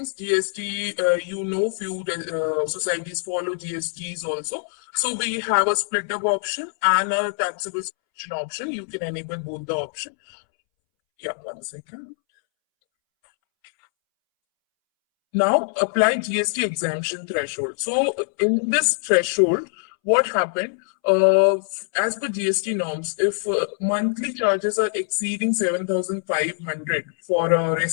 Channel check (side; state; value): right; silent; 63 dB below the other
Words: GST, few societies follow GSTs also. So we have a split up option and a taxable option. You can enable both the option. Yeah, 1 second. Now apply GST exemption threshold. So in this threshold, what happened, as per GST norms, if monthly charges are exceeding 7,500 for a